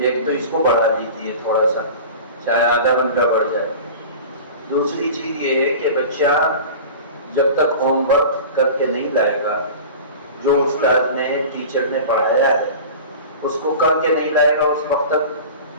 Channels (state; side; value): inverted; both; correlation -0.36